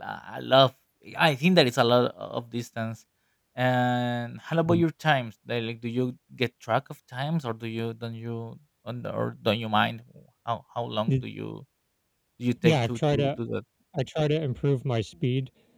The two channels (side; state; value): both; identical; correlation 1.00